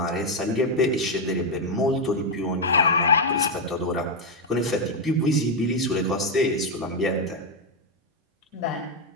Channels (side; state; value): both; normal; correlation 0.02